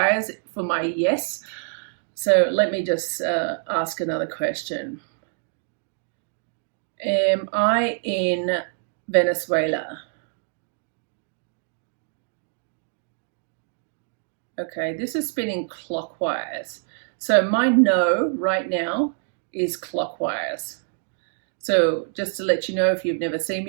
for my yes. So let me just ask another question. Am I in Venezuela? Okay, this is spinning clockwise. So my no right now is clockwise. So just to let you know, if you've never seen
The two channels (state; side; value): silent; left; digital silence